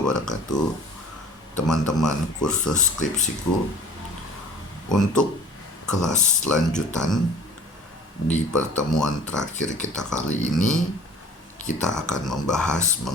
Teman-teman kursus skripsiku, untuk kelas lanjutan di pertemuan terakhir kita kali ini, kita akan membahas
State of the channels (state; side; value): normal; both; correlation 0.46